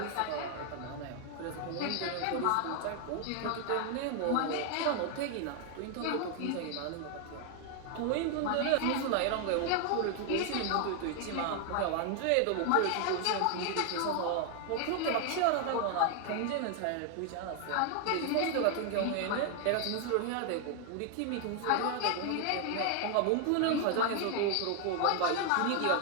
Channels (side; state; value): both; different; correlation 0.00